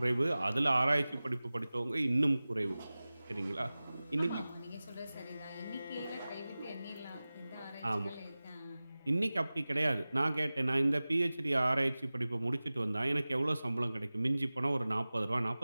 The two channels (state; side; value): inverted; both; correlation -0.98